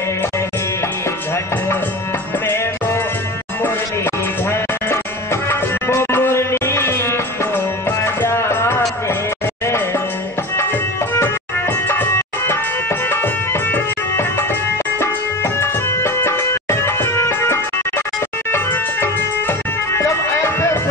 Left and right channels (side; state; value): both; normal; correlation 0.31